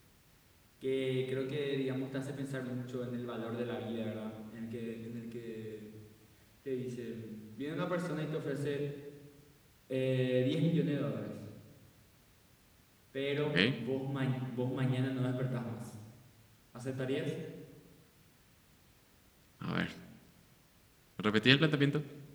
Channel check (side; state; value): both; identical; correlation 1.00